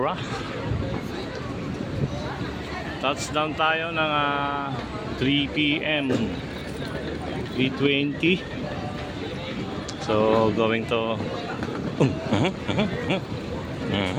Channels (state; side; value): identical; both; correlation 1.00